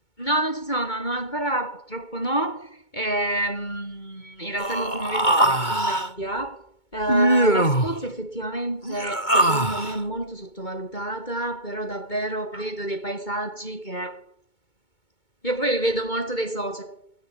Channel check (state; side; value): late; right; 2.2 ms